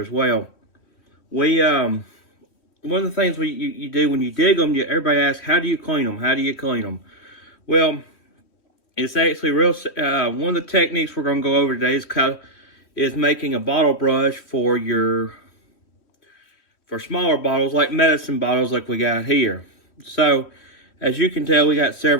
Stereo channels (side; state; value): right; late; 3.1 ms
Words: as well. We One of the things you do when you dig them, everybody asks, how do you clean them? How do you clean them? Well, it's actually real. One of the techniques we're going to go over today is making a bottle brush for smaller bottles, like medicine bottles, like we got here. So, as you can tell, we got